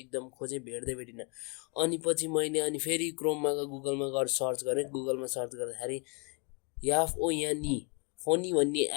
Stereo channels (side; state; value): right; quieter; 34.8 dB